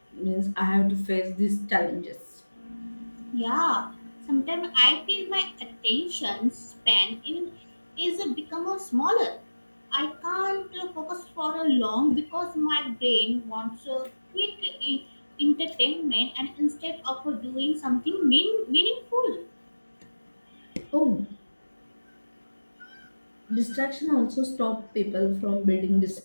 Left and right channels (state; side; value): inverted; both; correlation -1.00